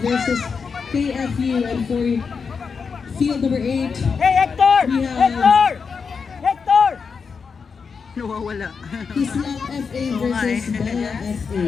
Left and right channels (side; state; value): right; quieter; 5.6 dB